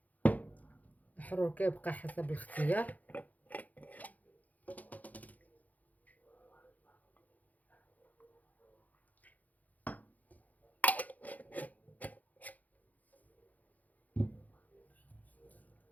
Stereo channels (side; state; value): right; late; 0.079 ms